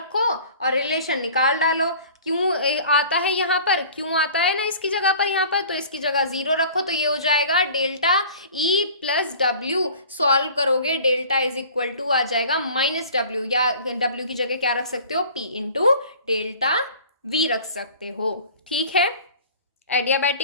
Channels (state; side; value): inverted; both; correlation -0.45